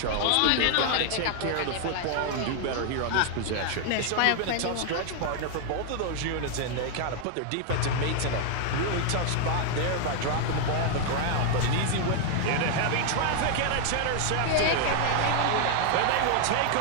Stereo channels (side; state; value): both; different; correlation 0.00